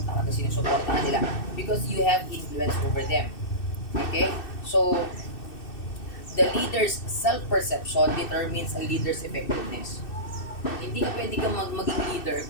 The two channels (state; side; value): late; right; 2.6 ms